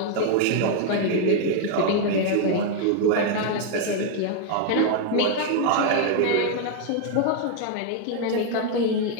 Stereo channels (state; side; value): different; both; correlation 0.00